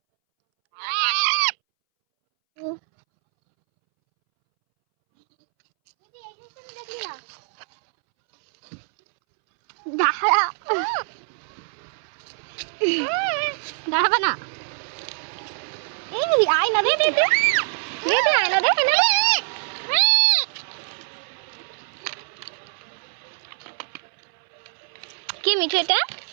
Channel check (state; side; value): silent; left; 63 dB below the other